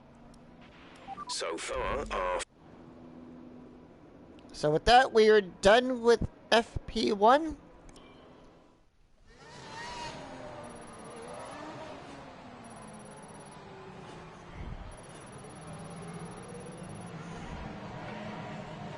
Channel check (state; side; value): identical; both; correlation 1.00